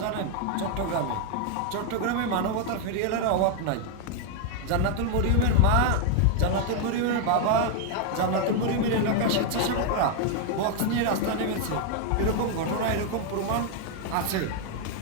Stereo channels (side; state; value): both; different; correlation 0.01